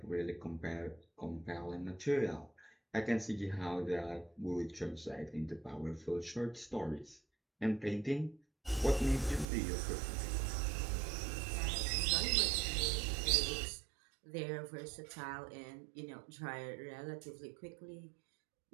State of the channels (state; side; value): drops out; left; at 9.5 s